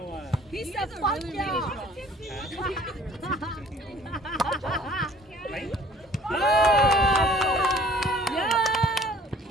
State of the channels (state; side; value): normal; both; correlation 0.52